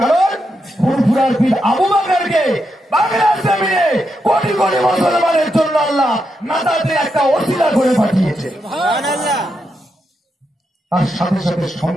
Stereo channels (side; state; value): both; normal; correlation 0.84